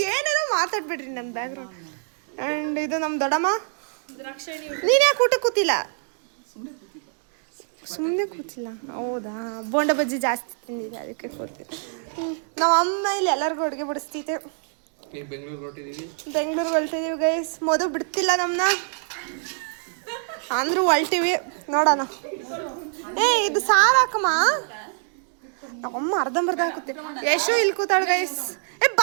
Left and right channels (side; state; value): left; silent; 62 dB below the other